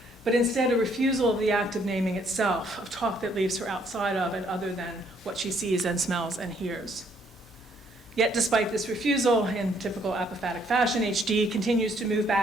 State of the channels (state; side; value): normal; both; correlation 0.67